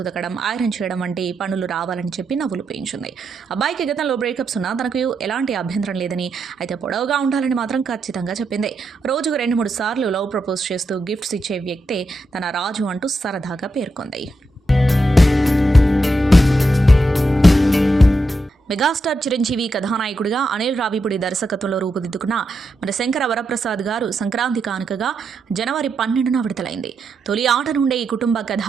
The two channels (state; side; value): normal; both; correlation 0.84